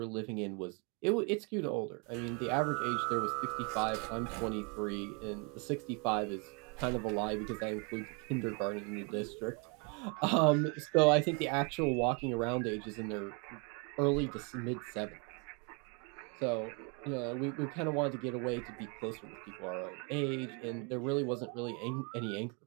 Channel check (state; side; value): quieter; left; 33.2 dB